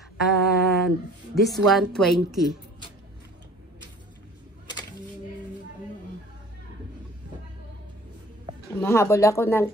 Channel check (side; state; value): both; normal; correlation 0.48